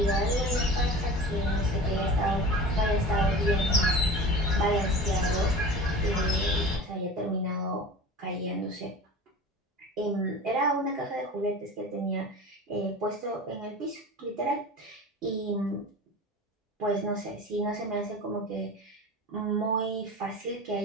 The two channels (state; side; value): normal; both; correlation 0.35